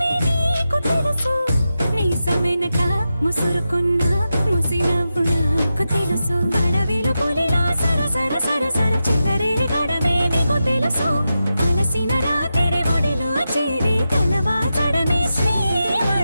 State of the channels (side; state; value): both; inverted; correlation -0.90